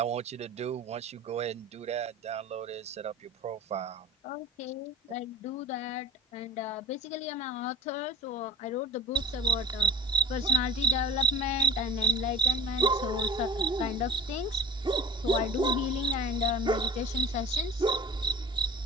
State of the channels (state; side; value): normal; both; correlation 0.40